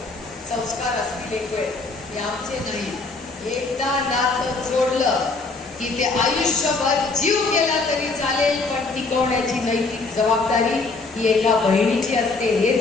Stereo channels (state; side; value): quieter; right; 3.8 dB